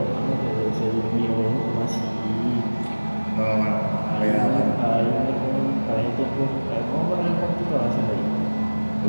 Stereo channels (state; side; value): inverted; both; correlation -1.00